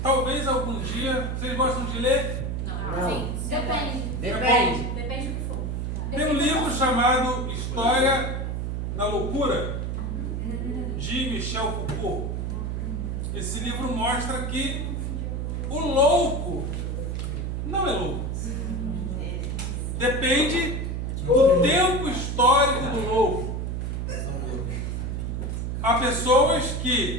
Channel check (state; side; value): noise; right; hum, 2 dB below the sound